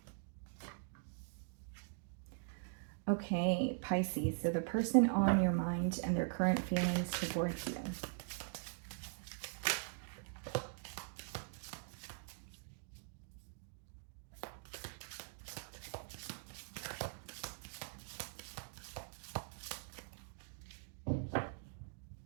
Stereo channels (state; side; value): silent; left; digital silence